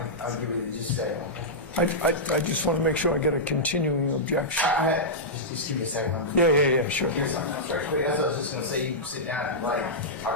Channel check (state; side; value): normal; both; correlation -0.12